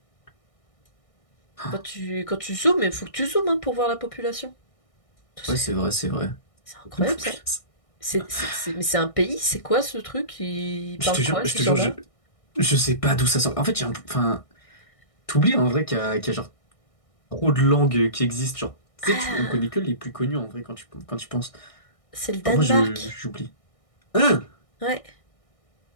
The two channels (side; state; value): right; late; 1.6 ms